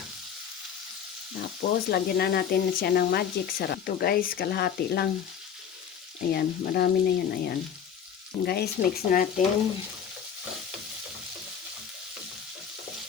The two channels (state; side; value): quieter; right; 8.1 dB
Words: Tapos, lagyan na natin siya ng magic sarap. Ito guys, kalahati lang. Ayan, marami na yan. Ayan. Guys, mix natin.